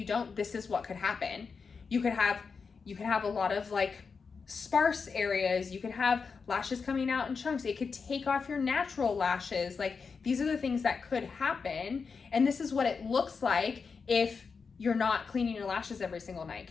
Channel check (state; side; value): quieter; right; 5.3 dB